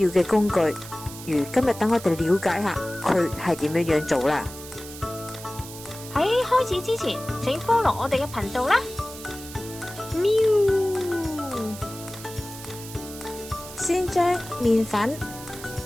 嘅工具。如今日等我哋了解下佢係點樣做啦。喺開始之前，請 follow 我哋嘅頻道啦。喵！先將麵粉、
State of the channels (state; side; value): noise; right; hiss, 14 dB below the sound